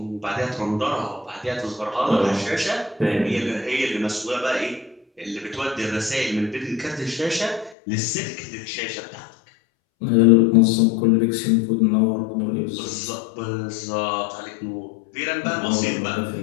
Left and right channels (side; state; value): right; drops out; at 7.8 s